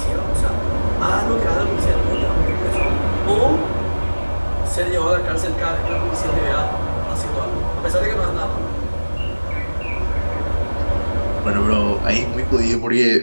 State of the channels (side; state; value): both; inverted; correlation -1.00